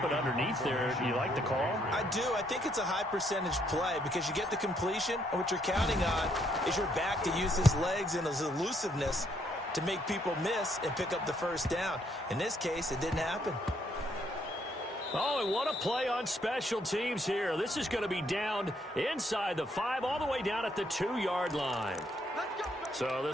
it underneath there. You like the call? I do. I think it's a high percentage play because you get the completion, and what you're counting on is your back to use his legs and his elusiveness to make people miss and pick up the first down. In this case, it didn't happen. Oh, and what a play on special teams here. This is going to be down inside the 5, all the way down at the 2-yard line. So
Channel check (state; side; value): normal; both; correlation 0.72